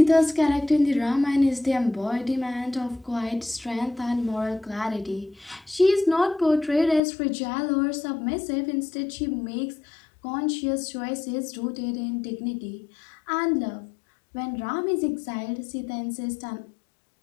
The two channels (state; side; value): drops out; right; at 7.0 s